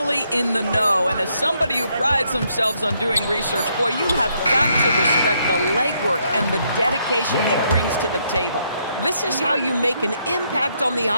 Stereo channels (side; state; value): both; inverted; correlation -0.74